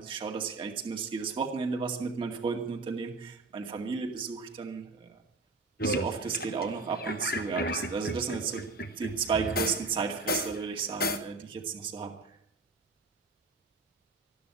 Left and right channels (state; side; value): quieter; left; 3.5 dB